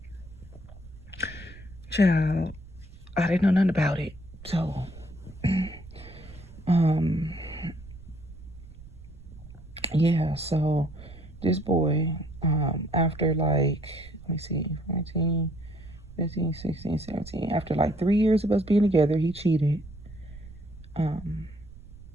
child, I didn't know nothing about it. So, yeah, so this boy, after like, let me see, 14, 15, 16, 17, after like 3 years of us being together, he cheated.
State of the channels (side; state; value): right; noise; rumble, 18 dB below the sound